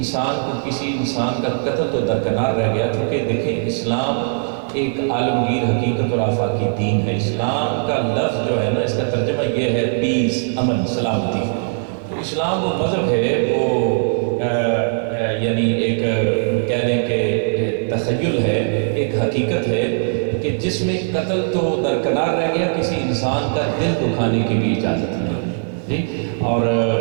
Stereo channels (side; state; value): left; silent; digital silence